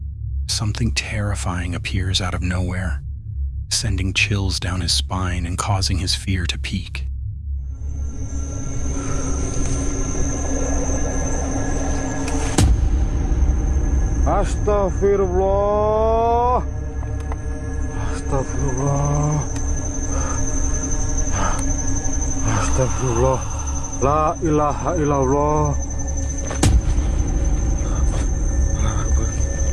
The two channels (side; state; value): both; identical; correlation 1.00